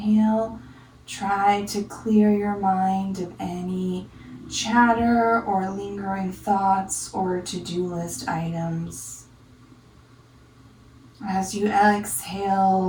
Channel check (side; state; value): both; identical; correlation 1.00